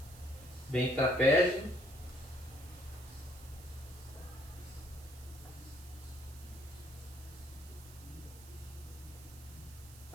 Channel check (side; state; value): right; noise; hiss, 18 dB below the sound